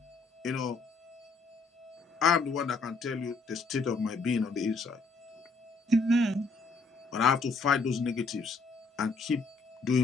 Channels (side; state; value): right; quieter; 3.8 dB